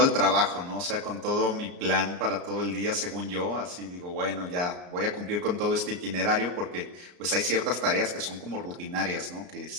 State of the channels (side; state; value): left; late; 34 ms